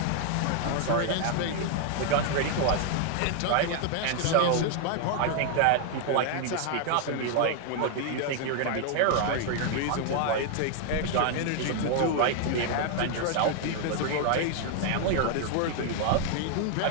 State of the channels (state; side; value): different; both; correlation 0.00